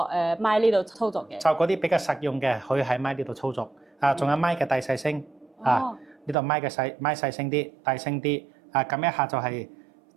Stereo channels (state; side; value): drops out; left; at 6.4 s